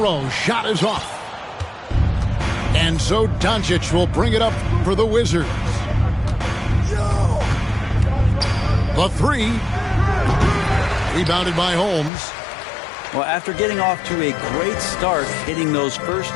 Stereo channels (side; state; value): right; drops out; at 12.1 s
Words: shot is off. And so Doncic will bring it up for the Wizards. The 3. Rebounded by Holmes. Well, after getting off to a great start, hitting those first